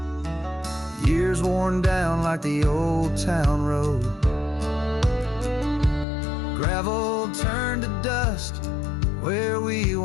Years worn down like the old town road, gravel turned to dust where we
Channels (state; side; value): drops out; right; at 6.1 s